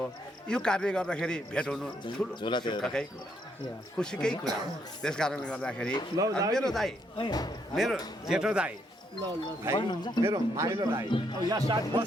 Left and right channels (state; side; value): normal; both; correlation 0.74